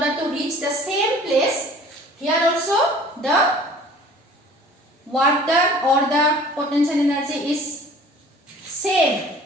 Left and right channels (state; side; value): normal; both; correlation 0.48